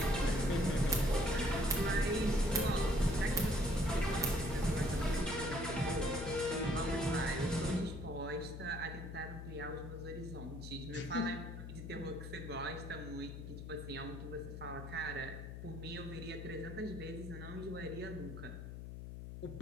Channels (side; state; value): left; noise; hum, 9 dB below the sound